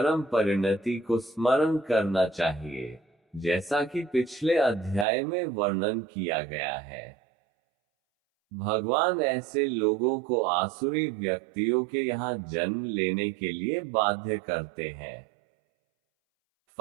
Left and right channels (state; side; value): drops out; left; at 5.1 s